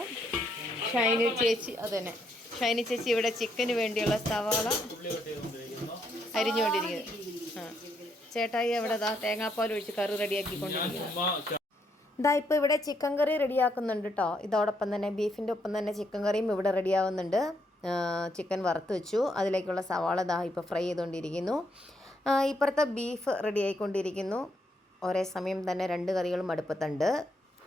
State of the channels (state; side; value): normal; both; correlation 0.75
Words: ഷൈനി ചേച്ചി അതന്നെ ഷൈനി ചേച്ചി ഇവിടെ ചിക്കന് വേണ്ടിയുള്ള സവാള അരിഞ്ഞുകൊണ്ടിരിക്കുന്നു. ആ, ചേട്ടായി അവിടെ തേങ്ങാപ്പാൽ ഒഴിച്ച് കറി റെഡിയാക്കിക്കൊണ്ടിരിക്കുന്നു. ഇതാ ഇപ്പോൾ ഇവിടെ ചിക്കൻ കറി റെഡിയാക്കുന്നുണ്ട് കേട്ടോ. ഇതോടൊപ്പം തന്നെ ബീഫിൻ്റെ ഒപ്പം തന്നെ ചിക്കൻ കറിയും ഇവിടെ റെഡിയാവുന്നുണ്ട്. ചിക്കൻ വറുത്ത് വെച്ചു. അതിലേക്കുള്ള സവാള ഇപ്പോൾ ഫ്രൈ ചെയ്തുകൊണ്ടിരിക്കുന്നു. ഇപ്പുറത്തെ ബീഫ് റെഡി ആയിക്കൊണ്ടിരിക്കുന്നു. ഒരേ സമയം തന്നെ 2 കറികളും അടുപ്പത്തുണ്ട്.